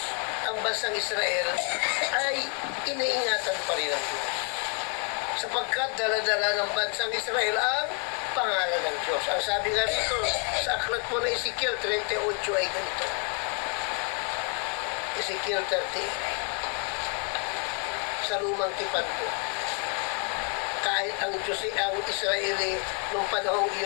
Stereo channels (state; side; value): quieter; right; 38.9 dB